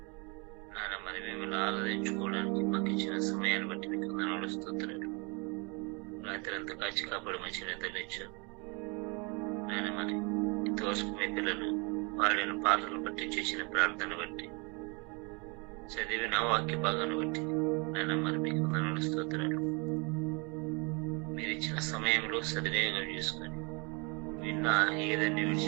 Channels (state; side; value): quieter; left; 31.5 dB